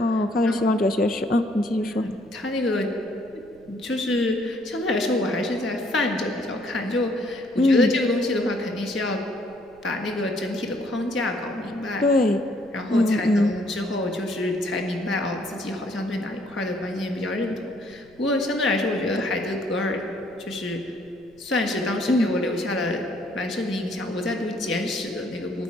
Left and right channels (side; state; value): right; noise; rumble, 28 dB below the sound